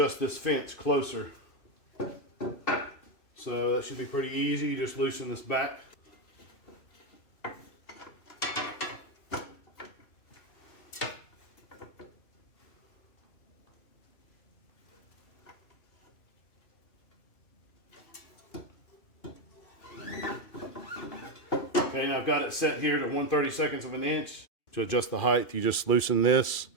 this fence closer. So that should be pretty easy. You just loosen this back. Okay, now I've got it set here to 1/32 of an inch. To adjust the height, you just loosen this,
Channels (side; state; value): right; late; 2.3 ms